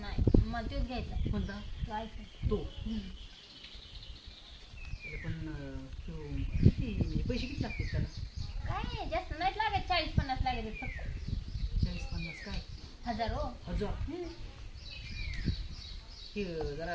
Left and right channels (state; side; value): identical; both; correlation 1.00